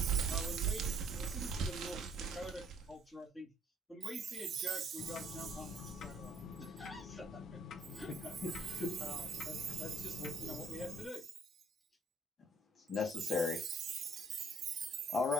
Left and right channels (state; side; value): normal; both; correlation 0.61